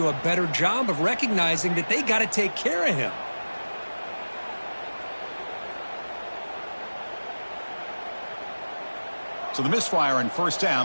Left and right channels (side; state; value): both; inverted; correlation -1.00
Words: a better job of recognizing that they got to take care of him. So the misfire on first